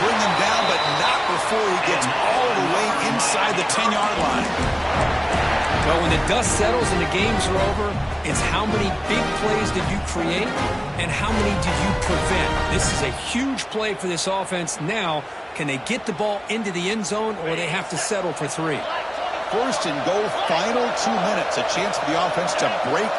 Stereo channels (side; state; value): both; identical; correlation 1.00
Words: bring him down, but not before he gets all the way inside the 10-yard line. Well, when the dust settles and the games are over, it's how many big plays did you create and how many did you prevent. This is a huge play for this offense. Now, can they get the ball into the end zone or they have to settle for 3? 1st and goal, final 2 minutes. A chance for the offense to break